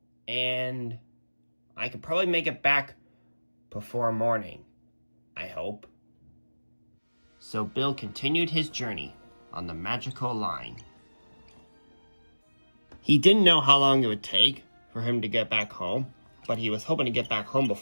and I could probably make it back before morning, I hope. So Bill continued his journey on the magical line. He didn't know how long it would take for him to get back home, but he was hoping to get back home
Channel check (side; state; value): both; inverted; correlation -1.00